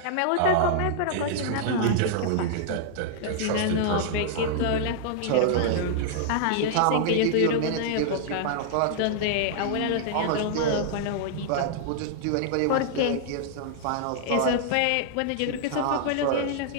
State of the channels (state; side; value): different; both; correlation -0.01